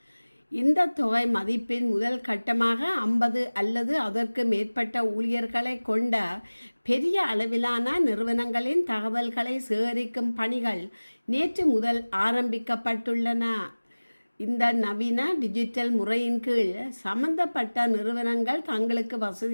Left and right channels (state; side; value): inverted; both; correlation -1.00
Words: இந்த தொகை மதிப்பின் முதல் கட்டமாக 50 அல்லது அதற்கு மேற்பட்ட ஊழியர்களை கொண்ட பெரிய அளவிலான நிறுவனங்களின் தகவல்களை சேகரிக்கும் பணிகள் நேற்று முதல் ஆரம்பிக்கப்பட்டுள்ளன. இந்த நவீன டிஜிட்டல் முறையின் கீழ் சம்பந்தப்பட்ட நிறுவனங்கள் தங்களுக்கு